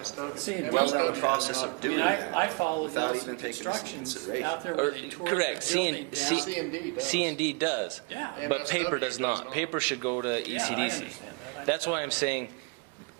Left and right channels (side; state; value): left; quieter; 31.1 dB